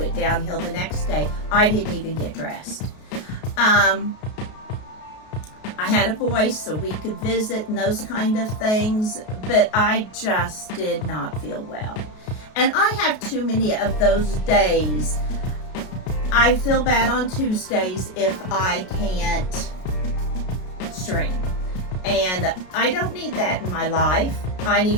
downhill the next day. I didn't even get dressed. I had a voice so we could visit and those kind of things, but I just did not feel well. And I have too many of those days. I feel bad on Tuesdays if I can't stream. And I don't need that in my life. I need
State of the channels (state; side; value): late; right; 33 ms